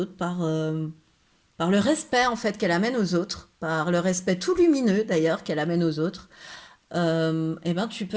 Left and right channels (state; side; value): identical; both; correlation 1.00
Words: par le respect en fait qu'elle amène aux autres, par le respect tout lumineux d'ailleurs qu'elle amène aux autres, et ben tu peux